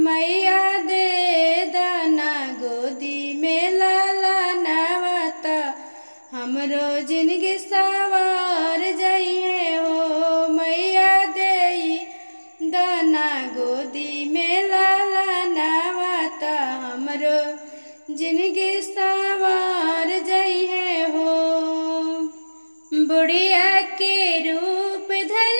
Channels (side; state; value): both; inverted; correlation -1.00